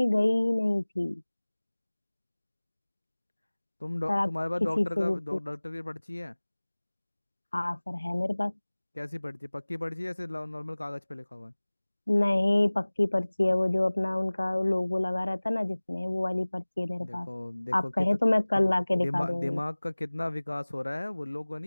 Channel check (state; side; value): inverted; both; correlation -1.00